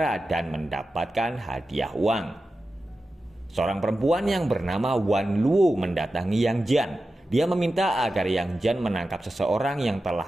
dan mendapatkan hadiah uang. Seorang perempuan yang bernama Wan Luo mendatangi Yang Jian. Dia meminta agar Yang Jian menangkap seseorang yang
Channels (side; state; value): both; normal; correlation 0.93